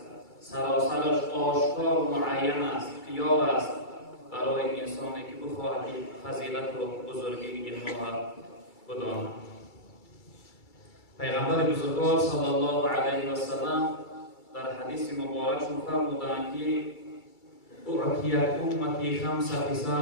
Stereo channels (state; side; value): late; right; 2.3 ms